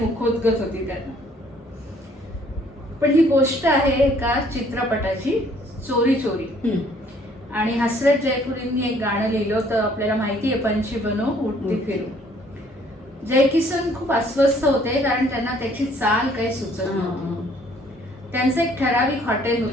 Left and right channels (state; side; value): normal; both; correlation 0.61